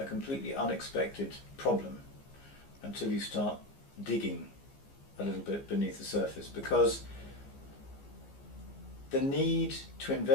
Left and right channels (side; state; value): right; late; 15 ms